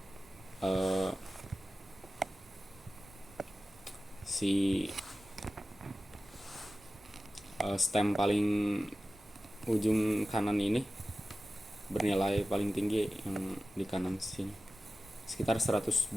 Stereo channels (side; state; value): both; normal; correlation 0.95